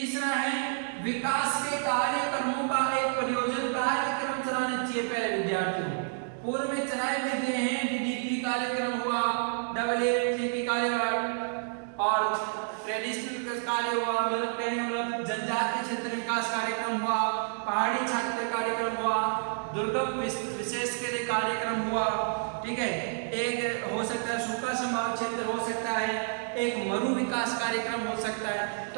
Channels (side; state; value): left; silent; 58 dB below the other